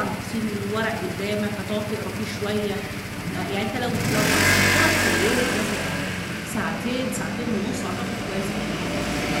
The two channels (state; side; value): identical; both; correlation 1.00